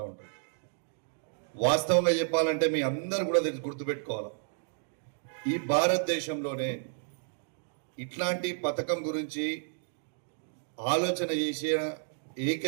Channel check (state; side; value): silent; left; digital silence